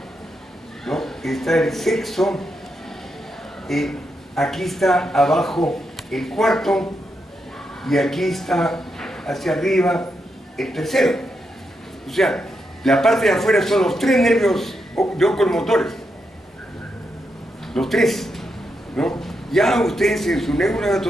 ¿no? Está el sexo, aquí está abajo el cuarto y aquí está hacia arriba el tercero. O sea, la parte de afuera son los tres nervios de oculomotores. Los tres, ¿no? Ya ustedes en su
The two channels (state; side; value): normal; both; correlation 0.83